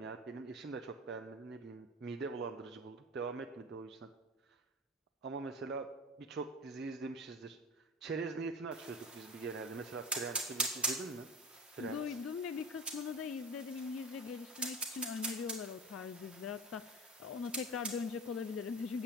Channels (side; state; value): both; normal; correlation 0.32